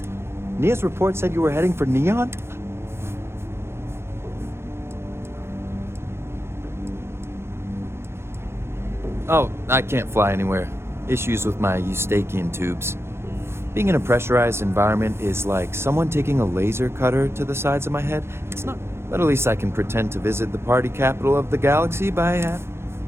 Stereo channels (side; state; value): left; late; 0.12 ms